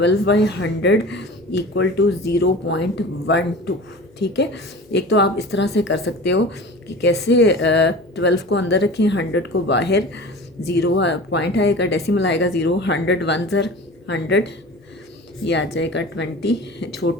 = 0.12, ठीक है। एक तो आप इस तरह से कर सकते हो कि कैसे 12 को अंदर रखें, 100 को बाहर, ज़ीरो पॉइंट आएगा, डेसिमल आएगा 0, 100 वन ज़र 100, ये आ जाएगा 20,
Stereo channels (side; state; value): both; normal; correlation 0.37